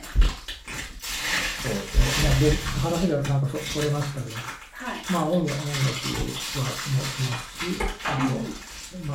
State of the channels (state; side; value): identical; both; correlation 1.00